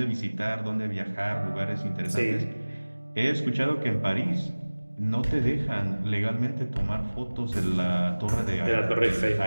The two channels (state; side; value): inverted; both; correlation -1.00